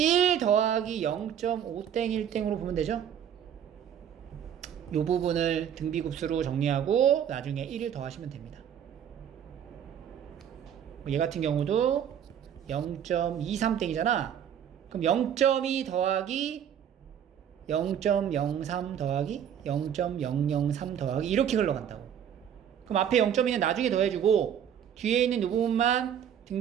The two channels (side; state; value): left; quieter; 9.1 dB